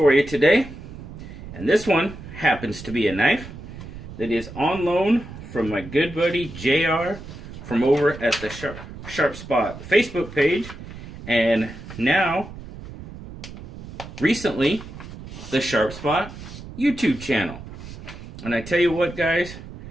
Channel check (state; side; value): noise; right; rumble, 13 dB below the sound